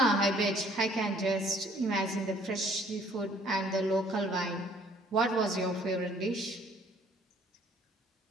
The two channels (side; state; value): both; normal; correlation 0.59